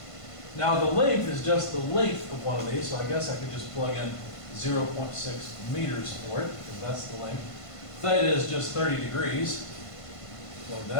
Now the length is just the length of one of these, so I guess I could just plug in 0.6 meters for it, because that's the length. Theta is just 30 degrees. Plug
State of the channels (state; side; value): late; right; 1.5 ms